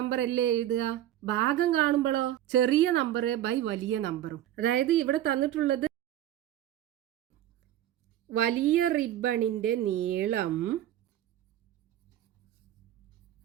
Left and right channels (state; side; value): quieter; left; 12.6 dB